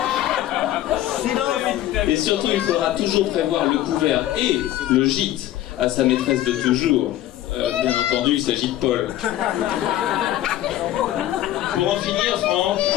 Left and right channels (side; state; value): right; quieter; 13.6 dB